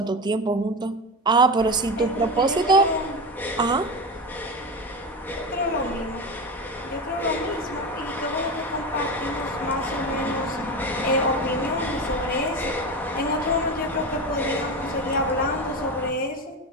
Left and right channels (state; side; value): normal; both; correlation 0.22